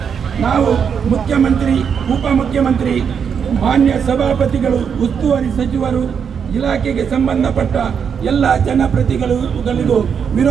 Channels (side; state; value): left; quieter; 7.1 dB